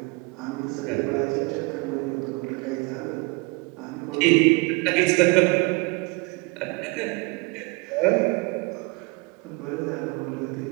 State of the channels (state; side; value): quieter; left; 28.7 dB